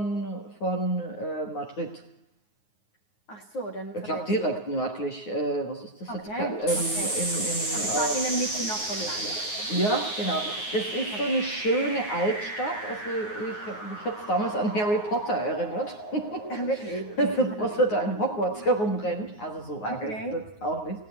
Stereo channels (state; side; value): late; right; 9.5 ms